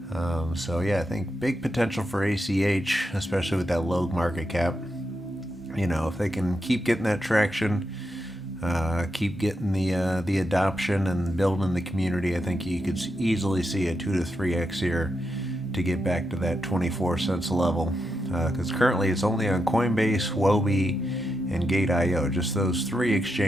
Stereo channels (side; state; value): both; normal; correlation 0.85